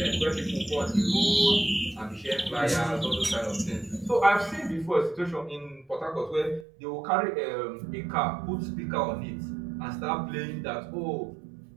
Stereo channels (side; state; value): left; drops out; at 6.7 s